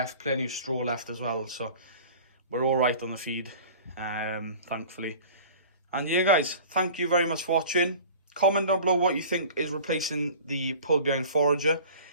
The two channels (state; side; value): inverted; both; correlation -0.42